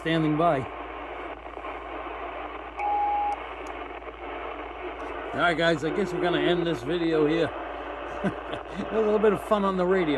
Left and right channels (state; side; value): identical; both; correlation 1.00